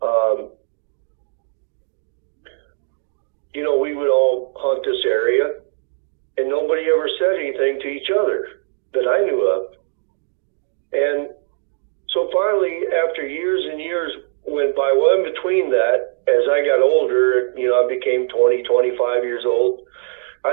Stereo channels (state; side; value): silent; left; digital silence